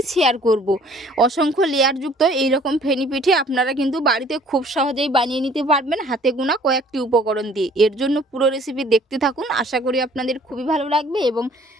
শেয়ার করব। অসংখ্য লেয়ারযুক্ত এই রকম ফেনি পিঠে আপনারা কিন্তু বাড়িতে খুব সহজেই বানিয়ে নিতে পারবেন হাতে গোনা কয়েকটি উপকরণ দিয়ে। এর জন্য পুরো রেসিপি দেখতে থাকুন, আশা করি আপনাদের খুবই ভালো লাগবে এবং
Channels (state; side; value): normal; both; correlation 0.56